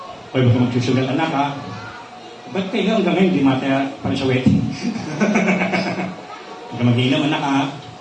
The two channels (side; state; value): both; identical; correlation 1.00